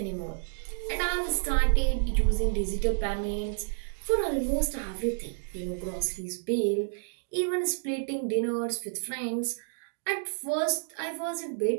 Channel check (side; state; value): left; silent; digital silence